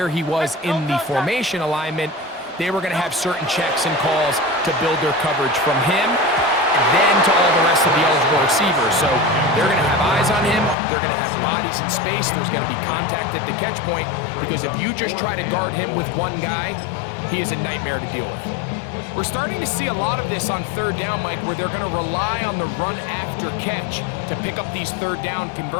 he was in the formation alignment, they were going to have certain checks and calls to build their coverage from him, and then to all the rest of the eligible receivers. So they're going to have eyes on him. They're going to have bodies in space. There's going to be contact at the catch point, because if you just try to guard him with one guy, he is a nightmare to deal with. We're starting to see a lot of this on third down, Mike, where they're going to rely on the run after catch to pick up these third down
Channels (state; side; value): drops out; right; at 10.8 s